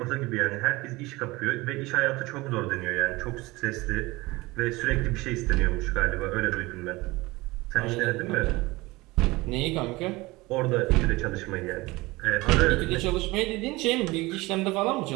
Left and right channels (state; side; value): quieter; left; 21.5 dB